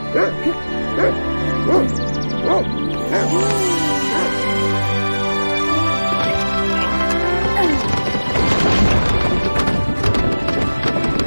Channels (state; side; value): inverted; both; correlation -1.00